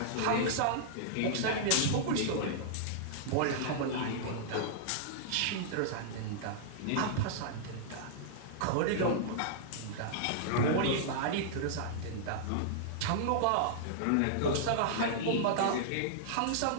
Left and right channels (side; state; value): both; different; correlation -0.02